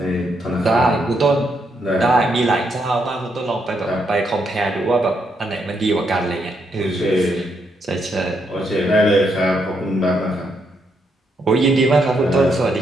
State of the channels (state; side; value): normal; both; correlation 0.77